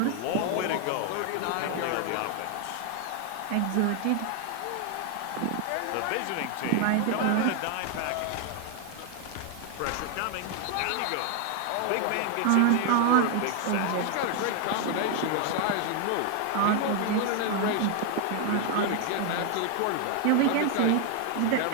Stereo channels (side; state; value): both; different; correlation 0.00